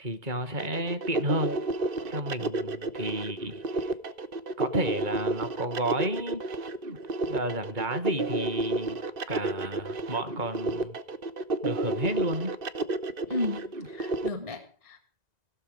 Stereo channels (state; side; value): late; left; 1.9 ms